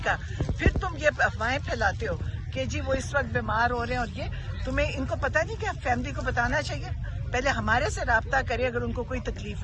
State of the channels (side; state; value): both; identical; correlation 1.00